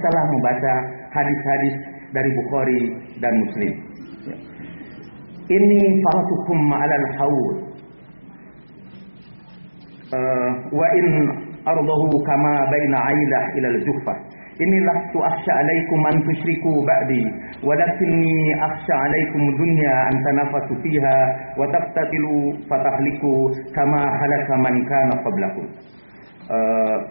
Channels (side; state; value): both; inverted; correlation -1.00